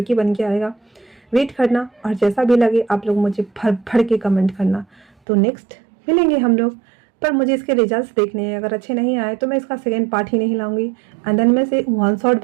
बन के आएगा। वेट करना, और जैसा भी लगे आप लोग मुझे भर भर के कमेंट करना। तो नेक्स्ट मिलेंगे हम लोग, पर मुझे इसके रिजल्ट्स देखने हैं। अगर अच्छे नहीं आए तो मैं इसका सेकेंड पार्ट ही नहीं लाऊंगी, एंड देन मैं इसे वन शॉट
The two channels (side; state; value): left; drops out; at 5.1 s